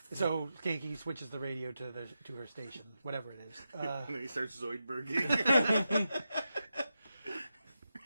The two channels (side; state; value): both; inverted; correlation -0.89